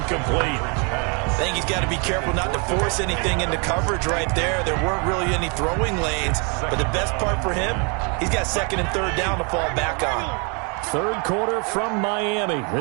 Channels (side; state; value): left; quieter; 34.7 dB